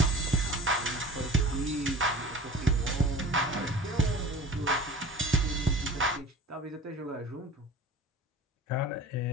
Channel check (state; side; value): normal; both; correlation 0.41